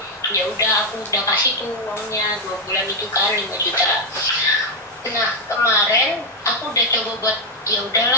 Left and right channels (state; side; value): normal; both; correlation 0.04